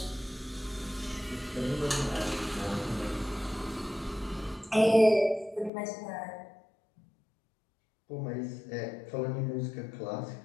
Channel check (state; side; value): drops out; right; at 5.7 s